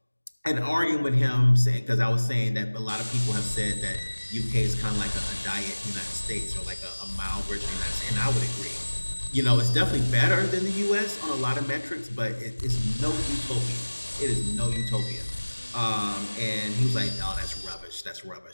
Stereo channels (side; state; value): both; inverted; correlation -1.00